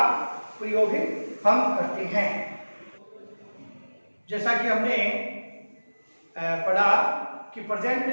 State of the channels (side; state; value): both; inverted; correlation -1.00